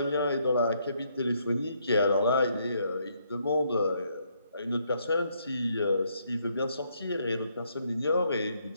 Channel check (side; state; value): both; inverted; correlation -0.73